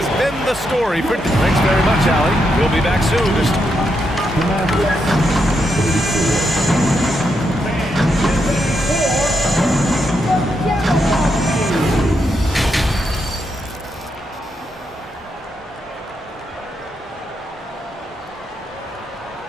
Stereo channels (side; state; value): both; normal; correlation 0.81